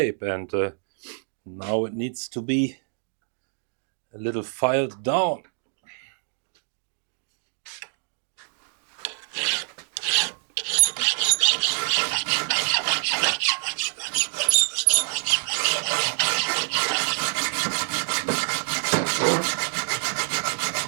and now it needs to be a little filed down.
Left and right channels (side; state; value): left; silent; digital silence